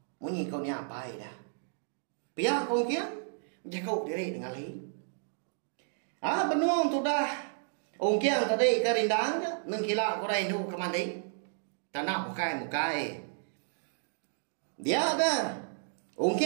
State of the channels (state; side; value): silent; left; digital silence